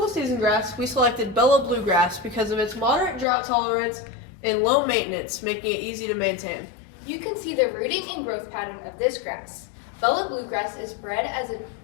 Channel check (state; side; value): drops out; right; at 3.2 s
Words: season grass, we selected Bella bluegrass because of its moderate drought tolerance and low maintenance, making it easy to maintain. You can see the rooting and growth pattern of this grass. Bella bluegrass is bred as